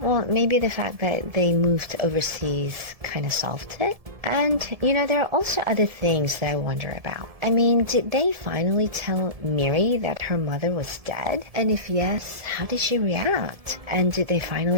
maybe the fact that they moved overseas kind of solved it. And, there are also other things that I wonder about. I mean, did they finally tell Miri that her mother was dead? And if yes, how did she react? And did they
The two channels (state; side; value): late; left; 1.7 ms